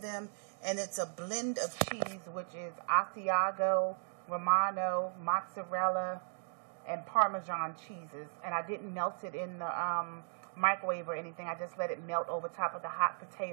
And it's a blend of cheese, which is Asiago, Romano, mozzarella, and Parmesan cheeses. And I didn't melt it in the microwave or anything. I just let it melt over top of the hot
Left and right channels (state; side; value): silent; left; digital silence